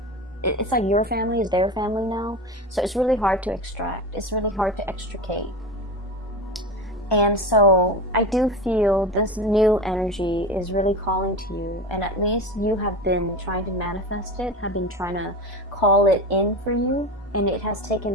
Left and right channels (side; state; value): both; normal; correlation 0.25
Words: it's like your family is their family now. So it's really hard to extract. It's really hard to extricate. And so I do feel this new energy is really calling to you, and at least you have been trying to manifest it, have been trying to call it in for you, and it has